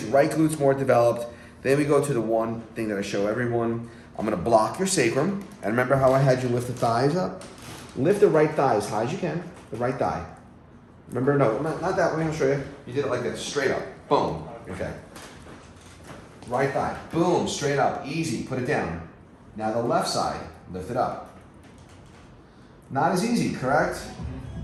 right glute's more developed. Then we go to the one thing that I show everyone. I'm gonna block your sacrum. And remember how I had you lift the thighs up? Lift the right thigh as high as you can, the right thigh. Remember, no, not that way, I'll show you. You did it like this, straight up, boom, okay. Right thigh, boom, straight up, easy, put it down. Now the left side, lift it up. Not as easy, correct?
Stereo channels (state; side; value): identical; both; correlation 1.00